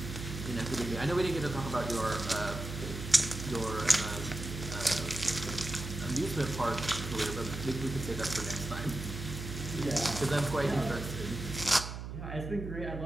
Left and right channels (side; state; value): right; noise; hum, 7 dB below the sound